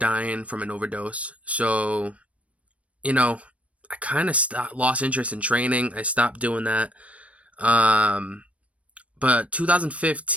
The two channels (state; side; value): late; left; 0.064 ms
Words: from an overdose. So, I kind of lost interest in training. I stopped doing that. But